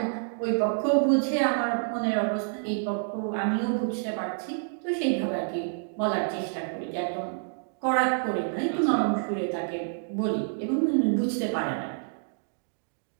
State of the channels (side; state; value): left; silent; digital silence